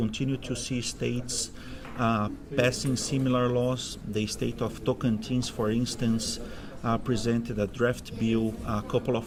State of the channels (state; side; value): identical; both; correlation 1.00